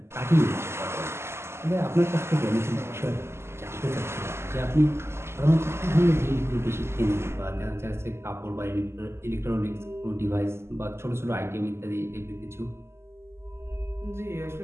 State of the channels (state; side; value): late; left; 0.12 ms